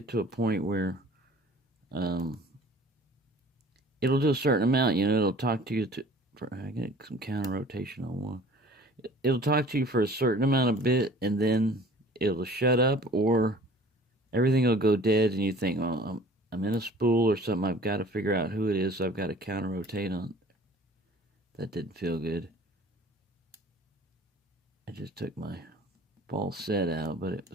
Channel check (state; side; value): normal; both; correlation 0.49